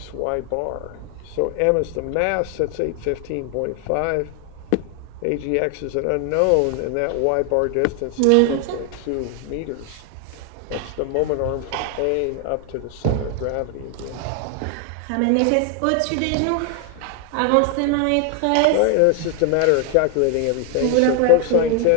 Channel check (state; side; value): different; both; correlation 0.00